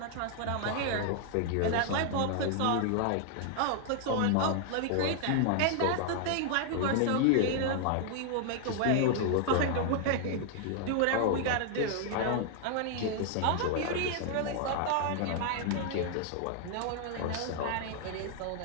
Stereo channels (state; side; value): different; both; correlation 0.00